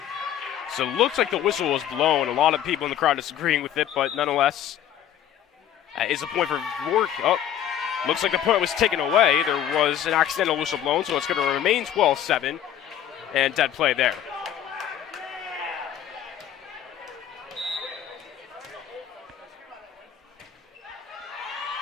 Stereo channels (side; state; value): right; quieter; 10.4 dB